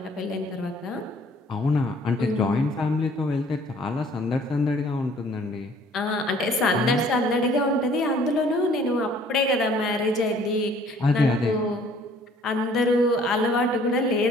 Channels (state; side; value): normal; both; correlation 0.57